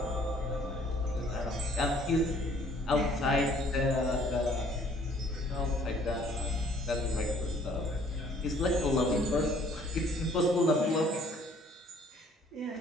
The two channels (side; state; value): both; normal; correlation 0.58